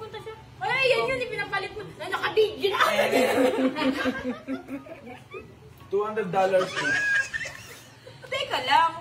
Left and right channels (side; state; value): both; identical; correlation 1.00